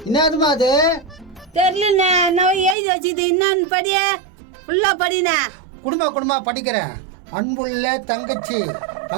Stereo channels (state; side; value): drops out; left; at 2.8 s